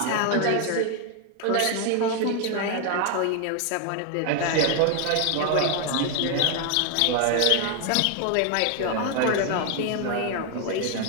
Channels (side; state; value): both; different; correlation 0.00